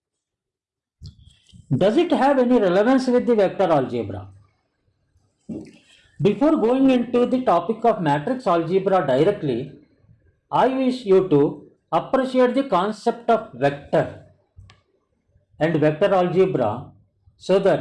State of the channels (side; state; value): both; identical; correlation 1.00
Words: Does it have any relevance with the vector algebra? Before going into the topic of matrix algebra directly, I wish you to appreciate the concept of vector and vector algebra so